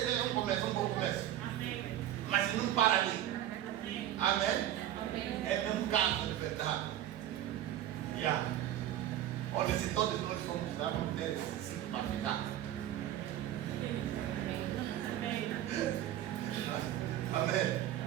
um começo, um bom começo. Mas não para ali. Amém? É mesmo casa de verdade. Olha, se todos nós formos lá, vamos ter esse ciclo para ficar. Amém?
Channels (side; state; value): left; quieter; 12.3 dB